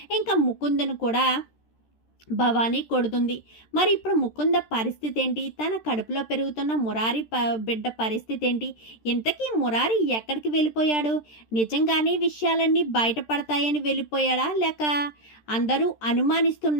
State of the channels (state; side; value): late; right; 13 ms